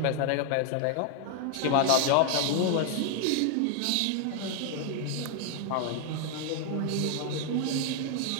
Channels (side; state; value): both; different; correlation 0.00